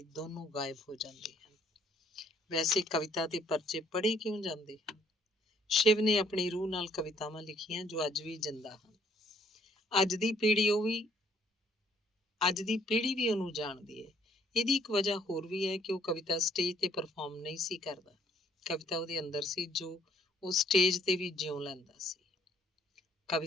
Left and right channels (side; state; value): both; normal; correlation 0.64